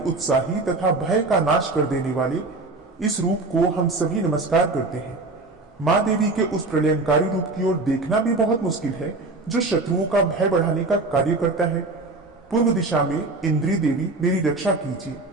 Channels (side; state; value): left; quieter; 3.3 dB